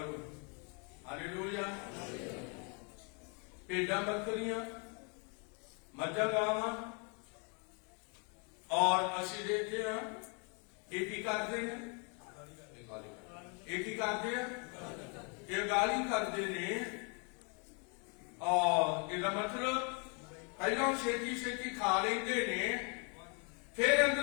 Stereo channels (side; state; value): right; quieter; 36.1 dB